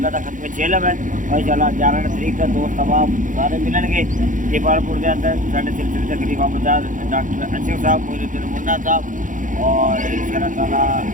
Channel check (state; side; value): late; left; 0.38 ms